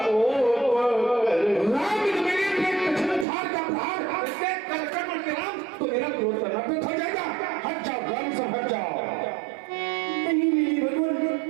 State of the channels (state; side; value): drops out; left; at 3.2 s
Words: राम मेरे पे कछन उठार का प्रहार इससे कलकर मत राम, तो मेरा क्रोध करना पे हो जाएगा। हट जाओ ग्राम से हट जाओ। नहीं मेरी भगवान,